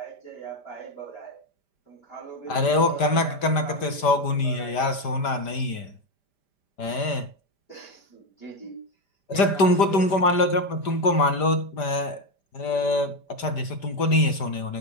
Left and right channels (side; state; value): right; late; 5.0 ms